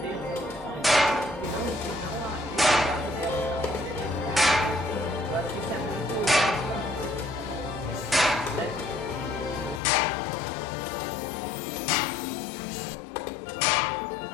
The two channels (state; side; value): drops out; right; at 9.8 s